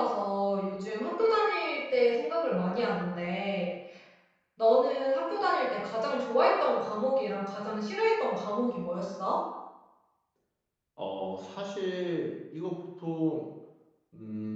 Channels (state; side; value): identical; both; correlation 1.00